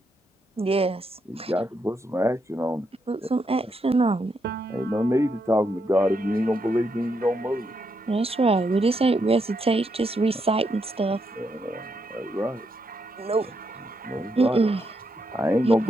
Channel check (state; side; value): normal; both; correlation 0.80